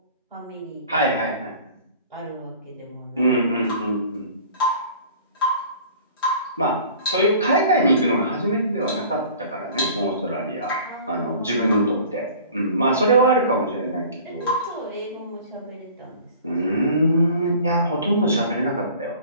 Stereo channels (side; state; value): both; inverted; correlation -0.46